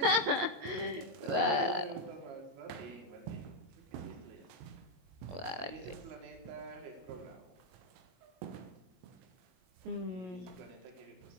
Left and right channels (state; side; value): late; left; 22 ms